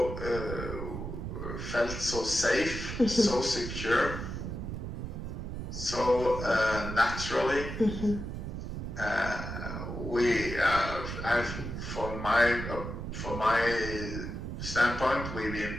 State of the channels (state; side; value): noise; right; rumble, 6 dB below the sound